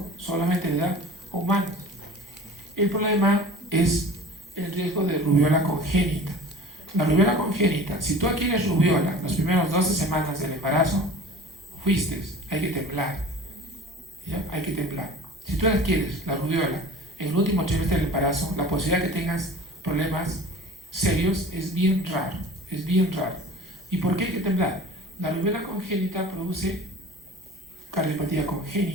solamente de edad humana. El problema es el riesgo de rubiola congénita. La rubiola congénita, si tú adquieres rubiola las primeras 12 semanas del embarazo, fuiste, hay que temblar. ¿Ya? Hay que temblar. Si tú adquieres la rubiola en el último trimestre del embarazo, la posibilidad de que tengas problemas serios es bien raro. Es bien raro. ¿Y por qué hay que temblar? La rubiola congénita produce cardiopatía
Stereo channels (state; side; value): normal; both; correlation 0.41